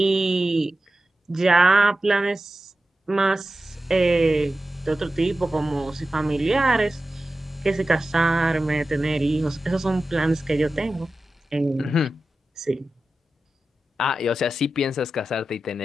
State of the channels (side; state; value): both; normal; correlation 0.93